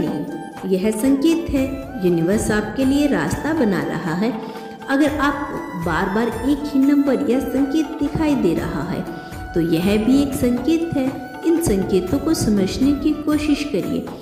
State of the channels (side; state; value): both; identical; correlation 1.00